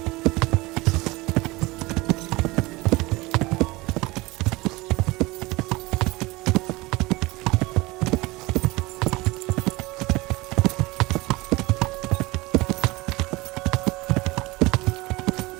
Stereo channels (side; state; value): left; quieter; 22.1 dB